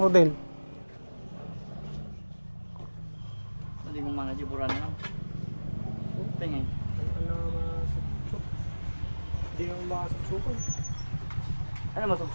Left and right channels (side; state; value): both; inverted; correlation -1.00